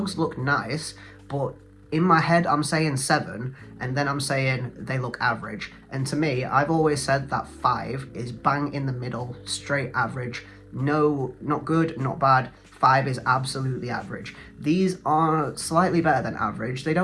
look nice, but in my head, I'm saying 7, and then I'm saying they look average. And to me, I've always said that 5 is bang in the middle, straight average. No, not good, not bad. 5 is absolutely average. These are slightly better than average. They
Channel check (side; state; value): both; identical; correlation 1.00